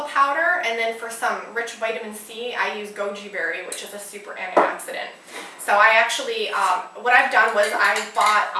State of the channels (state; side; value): identical; both; correlation 1.00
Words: powder, and then for some rich vitamin C, I use goji berry, which is a super antioxidant. So I actually, what I've done was I bought